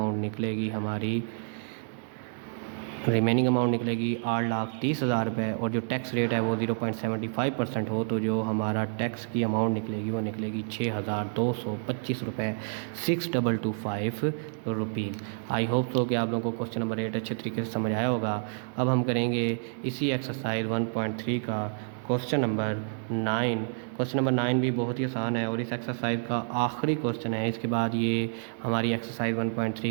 निकलेगी 8,30,000 रुपये। और जो टैक्स रेट है वो 0.75% हो, तो जो हमारा टैक्स की अमाउंट निकलेगी वो निकलेगी 6,225 रुपये, 6,225 रुपीज़। आई होप तो कि आप लोगों को क्वेश्चन नंबर 8 अच्छे तरीके से समझ आया होगा। अब हम करेंगे इसी एक्सरसाइज 1.3 का क्वेश्चन नंबर 9। क्वेश्चन नंबर 9 भी बहुत ही आसान है और इस एक्सरसाइज का आखिरी क्वेश्चन है। इसके बाद ये हमारी एक्सरसाइज 1.3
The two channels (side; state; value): left; silent; digital silence